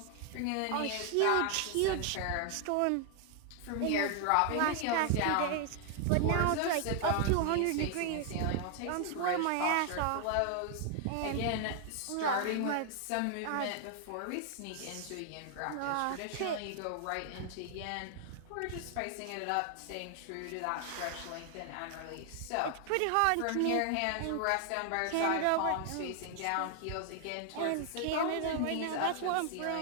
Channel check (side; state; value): both; different; correlation 0.00